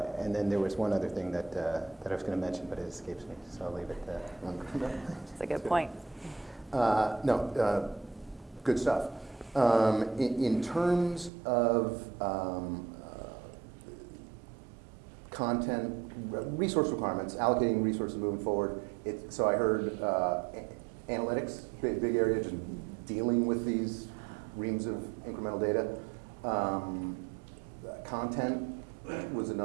then there was one other thing that I was going to mention, but it escapes me, so I'll leave it there. That's a good point. Good stuff. In terms of content, resource requirements, allocating resources moving forward, so I heard analytics, big area, just dealing with these reams of incremental data. Content was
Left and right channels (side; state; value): left; drops out; at 11.3 s